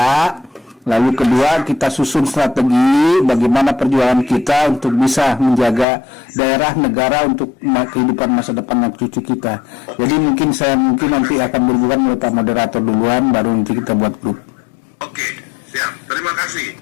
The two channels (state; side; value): drops out; right; at 5.9 s